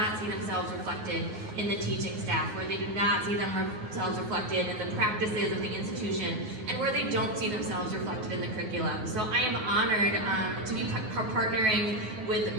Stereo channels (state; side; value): late; left; 9.6 ms